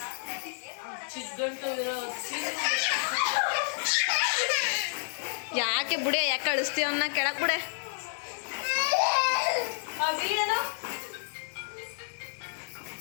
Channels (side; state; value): right; silent; digital silence